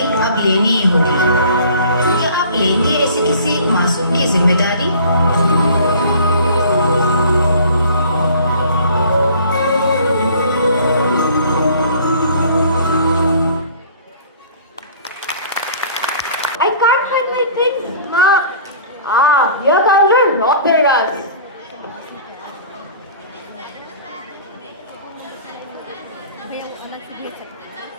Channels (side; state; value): both; inverted; correlation -0.48